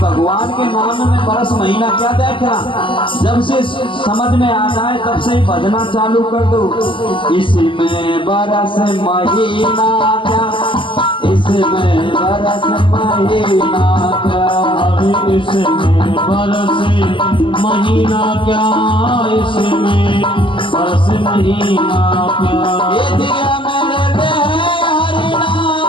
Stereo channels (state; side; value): late; right; 0.25 ms